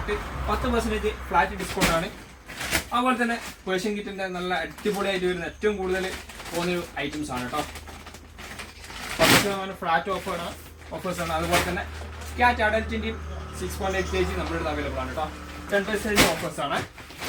10% ഫ്ലാറ്റ് ഡിസ്കൗണ്ട് ആണ്. അതുപോലെ തന്നെ പേർഷ്യൻ കിറ്റിന്റെ നല്ല അടിപൊളിയായിട്ട് വരുന്ന ഏറ്റവും കൂടുതൽ പോകുന്നൊരു ഐറ്റംസ് ആണ് കേട്ടോ. 10% ഫ്ലാറ്റ് ഓഫേഴ്സ് ആണ്. അതുപോലെ തന്നെ ക്യാറ്റ് അഡൽറ്റിന്റെയും 6.8 kg നമ്മുടെ അടുത്ത് അവൈലബിൾ ആണ് കേട്ടോ. 10% ഓഫേഴ്സ് ആണ്.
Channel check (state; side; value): identical; both; correlation 1.00